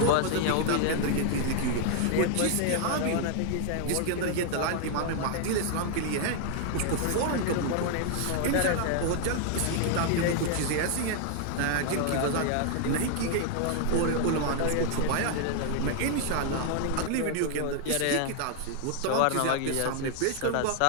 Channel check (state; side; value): different; both; correlation 0.00